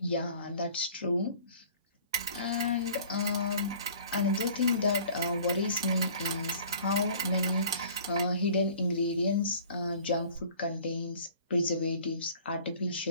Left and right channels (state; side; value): inverted; both; correlation -0.49